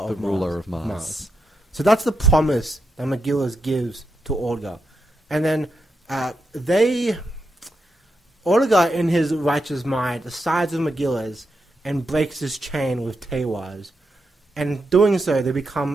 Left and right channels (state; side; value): normal; both; correlation 0.84